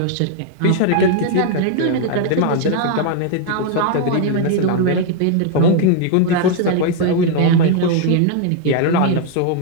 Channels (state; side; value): different; both; correlation 0.00